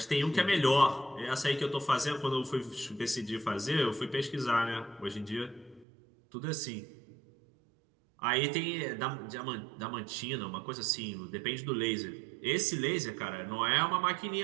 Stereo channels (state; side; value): drops out; left; at 5.9 s